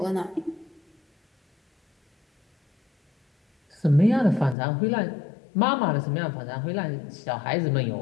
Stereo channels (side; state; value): right; drops out; at 4.5 s